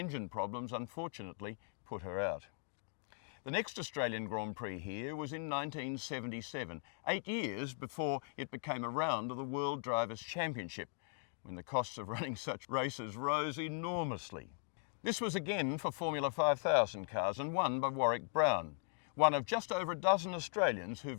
problems unfortunately put her out. The next Australian Grand Prix here was in 1977, 8 years before it became a round of the World Drivers' Championship, when the costs of running such races rose enormously. This was again for Formula 5000 cars and won by Warwick Brown, one of just over a dozen Australians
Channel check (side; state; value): right; silent; 52 dB below the other